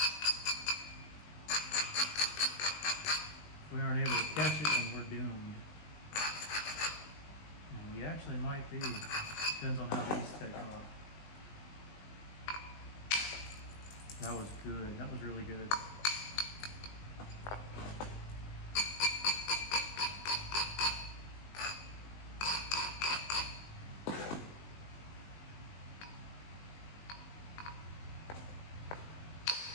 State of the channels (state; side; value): late; right; 20 ms